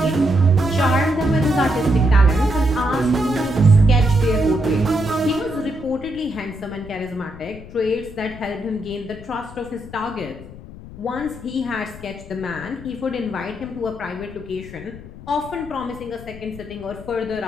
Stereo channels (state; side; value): noise; left; rumble, 16 dB below the sound